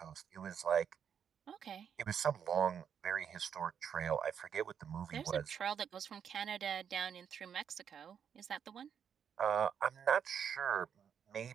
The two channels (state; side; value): quieter; left; 7.9 dB